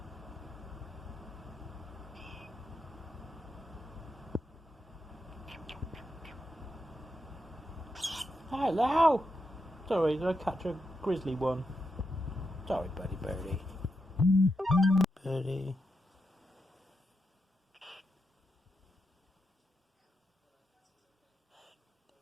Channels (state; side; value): normal; both; correlation 0.85